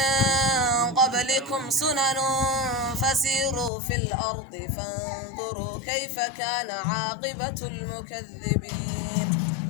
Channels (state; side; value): drops out; right; at 3.7 s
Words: قبلكم سنن فسيروا في الأرض فانظروا كيف كان عاقبة المكذبين